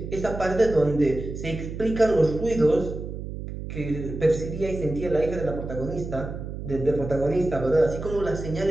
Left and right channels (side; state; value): right; noise; hum, 8 dB below the sound